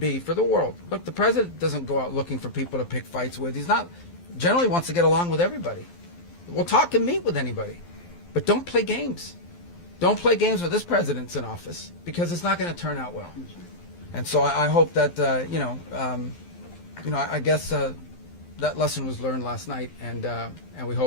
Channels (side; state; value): right; late; 12 ms